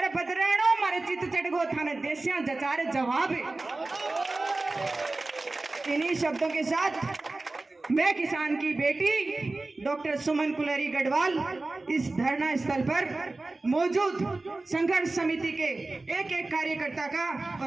बदराणो मारे चित चढ़गो थाने देसिया जचारे जवाब। इन्हीं शब्दों के साथ मैं किसान की बेटी डॉक्टर सुमन कुलरी गढ़वाल इस धरना स्थल पर मौजूद संघर्ष समिति के एक एक कार्यकर्ता का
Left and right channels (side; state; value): left; quieter; 3.2 dB